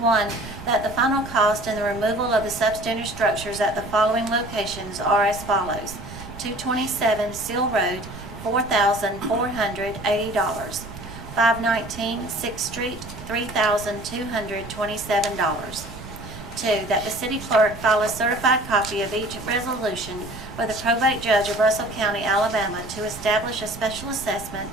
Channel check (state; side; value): noise; right; rumble, 14 dB below the sound